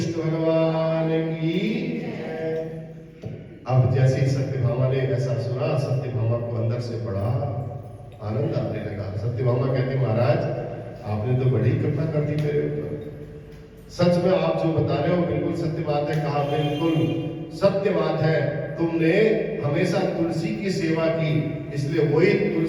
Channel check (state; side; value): identical; both; correlation 1.00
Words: भगवान की। अब जैसे ही सत्यभामा ने ऐसा सुना, सत्यभामा को अंदर से बड़ा आनंद आने लगा। सत्यभामा कहते महाराज आपने तो बड़ी कृपा कर दी मेरे ऊपर, सच में आप जो बता रहे हो बिल्कुल सत्य बात है। कहा बिल्कुल सत्य बात है, तुमने हमेशा तुलसी की सेवा की, इसलिए वही